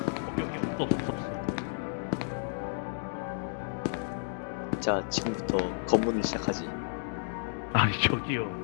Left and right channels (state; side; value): silent; right; digital silence